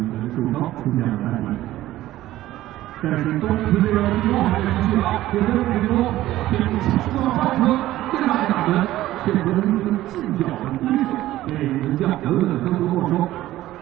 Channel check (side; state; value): left; quieter; 15.1 dB